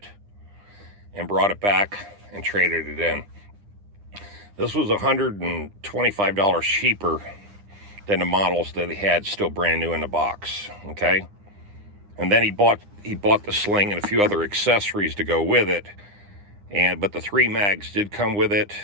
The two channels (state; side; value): late; left; 9.9 ms